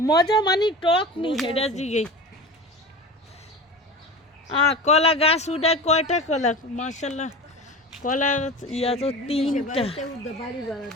মজা মানে টক নি হেডা জিগে। কলা গাছ উঠায় কয়টা কলা? মাশাআল্লাহ কলা ইয়া তো 3টা। বাড়িতে উঠবে, বাড়ি ভাড়া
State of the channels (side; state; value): both; normal; correlation 0.31